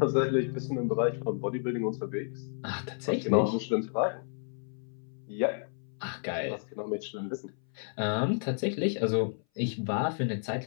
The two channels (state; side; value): silent; right; 57 dB below the other